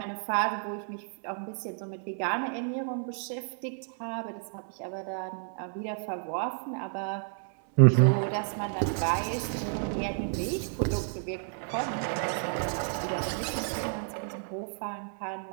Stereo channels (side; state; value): left; silent; 57 dB below the other